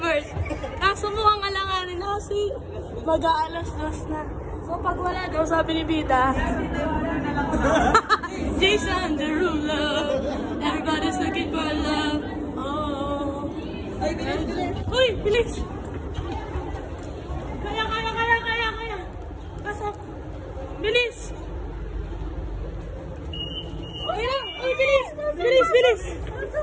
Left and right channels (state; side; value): identical; both; correlation 1.00